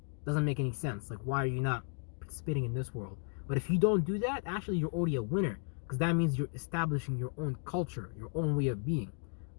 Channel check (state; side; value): silent; right; 55 dB below the other